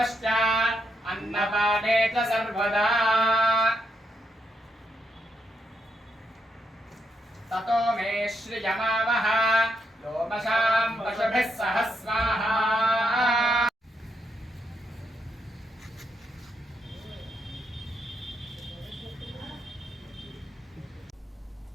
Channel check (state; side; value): normal; both; correlation 0.79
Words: అన్నపానే చ సర్వదా తతో మే శ్రియమావహ లోమశాం పశుభిః సహ స్వాహా.